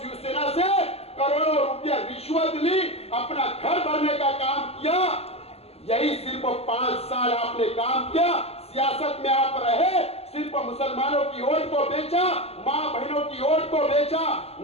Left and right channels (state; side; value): late; right; 0.29 ms